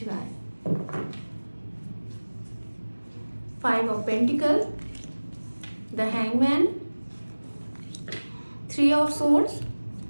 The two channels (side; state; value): both; inverted; correlation -1.00